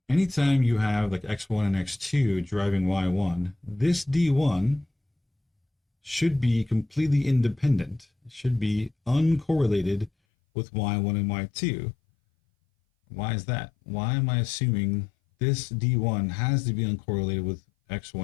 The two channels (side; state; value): right; drops out; at 10.1 s